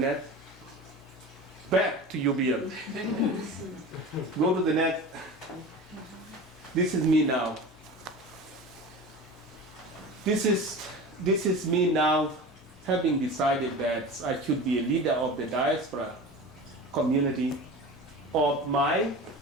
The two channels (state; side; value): normal; both; correlation 0.33